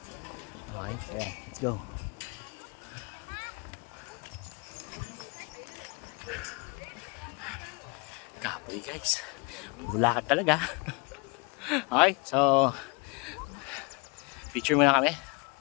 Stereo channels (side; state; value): right; quieter; 30.6 dB